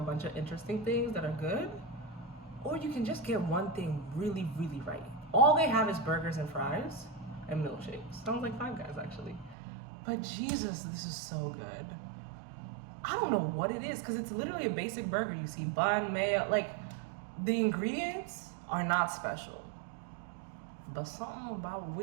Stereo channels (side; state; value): left; drops out; at 9.6 s